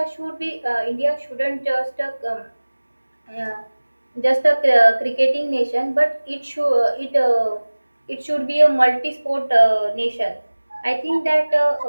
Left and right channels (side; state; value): both; inverted; correlation -1.00